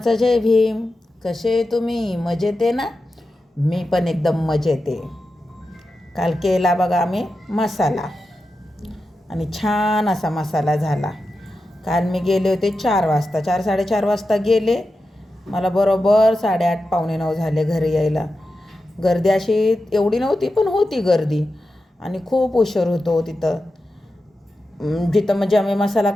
जय भीम. कसे तुम्ही? मजेत आहे ना? मी पण एकदम मजेत आहे. काल केला बघा आम्ही मसाला आणि छान असा मसाला झाला. काल मी गेले होते 4 वाजता, 4-4:30 वाजता गेले. मला बरोबर 8:30 पावणे 9 झाले घरी यायला. गर्दी अशी एवढी नव्हती, पण होती गर्दी आणि खूप उशीर होतो तिथं. जिथं म्हणजे आम्ही मसाला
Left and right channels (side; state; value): both; normal; correlation 0.91